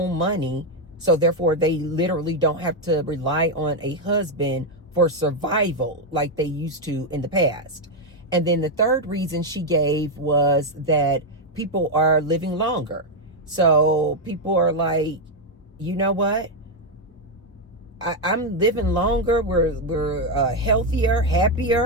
money. So therefore they literally don't have to rely on a husband for survival like they used to in the past. And then the third reason she gave was that people are living longer. So people are like, you know what? I'm living longer. We're healthier,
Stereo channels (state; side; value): normal; both; correlation 0.03